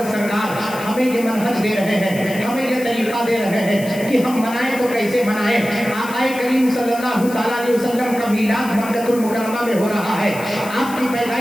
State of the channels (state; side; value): noise; left; hiss, 15 dB below the sound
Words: سرکار ہمیں یہ منہج دے رہے ہیں، ہمیں یہ طریقہ دے رہے ہیں کہ ہم منائیں تو کیسے منائیں. آقا کریم صلی اللہ تعالیٰ علیہ وسلم کا میلاد مکہ المکرمہ میں ہو رہا ہے، آپ کی